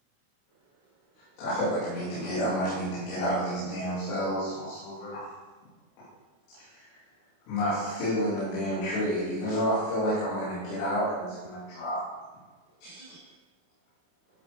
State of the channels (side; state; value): right; late; 28 ms